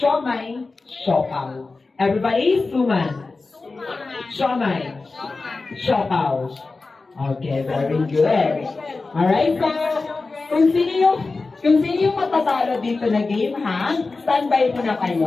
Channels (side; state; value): right; quieter; 3.8 dB